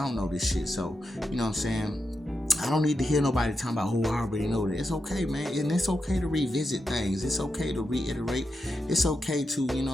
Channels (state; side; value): normal; both; correlation 0.87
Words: know this shit. So, you know what I'm saying? I don't need to hear nobody talking about, oh, I already know that. It's okay, man. And it's okay to revisit things. It's okay to reiterate. It's okay to, you know